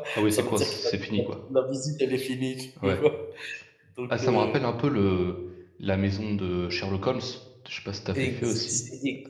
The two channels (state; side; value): identical; both; correlation 1.00